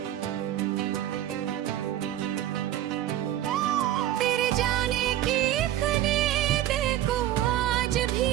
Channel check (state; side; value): quieter; left; 12.7 dB